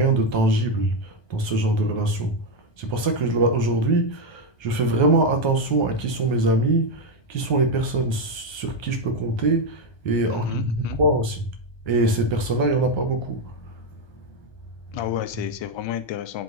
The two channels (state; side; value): late; right; 1.3 ms